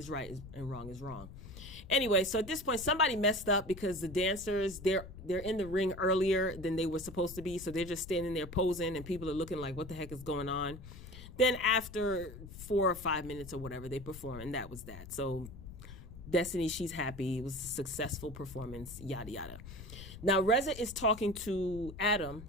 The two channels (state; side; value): noise; left; rumble, 14 dB below the sound